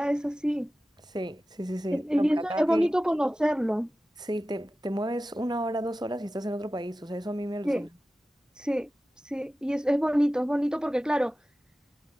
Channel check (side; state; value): both; normal; correlation 0.95